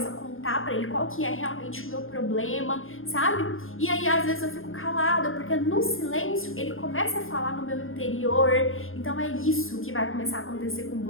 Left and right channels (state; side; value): late; right; 0.59 ms